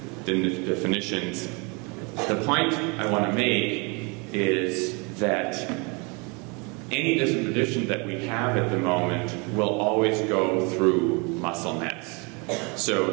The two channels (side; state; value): left; quieter; 30.7 dB